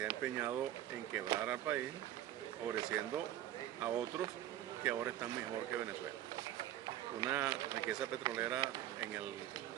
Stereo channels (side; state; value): left; quieter; 12.8 dB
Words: ha empeñado en quebrar al país, favoreciendo a otros que ahora están mejor que Venezuela. Una riqueza petrolera en el